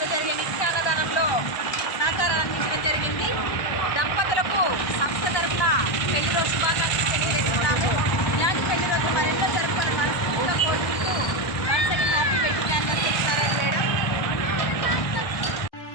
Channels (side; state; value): right; late; 1.2 ms